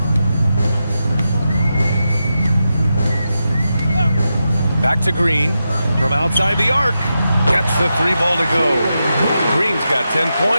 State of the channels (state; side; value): inverted; both; correlation -0.88